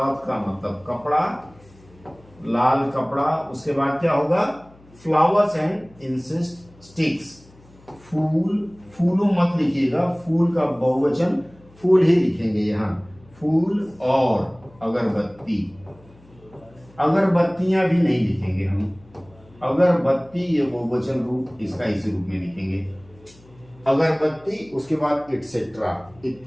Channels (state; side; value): noise; left; hum, 26 dB below the sound